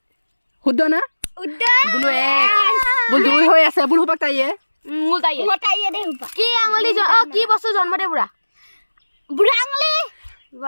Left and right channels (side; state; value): both; inverted; correlation -1.00